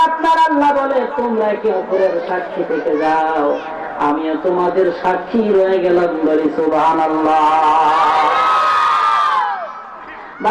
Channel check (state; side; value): identical; both; correlation 1.00